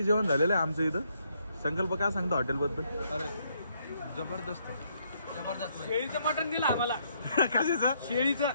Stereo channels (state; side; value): inverted; both; correlation -0.72